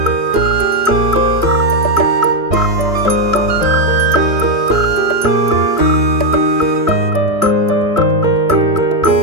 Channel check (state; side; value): late; left; 3.0 ms